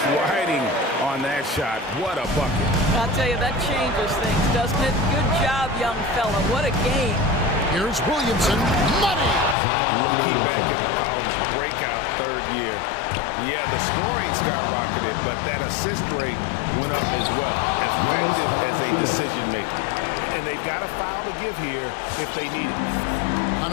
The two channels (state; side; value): drops out; right; at 9.6 s